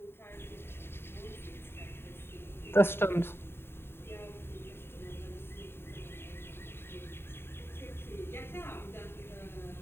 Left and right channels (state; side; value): late; right; 0.11 ms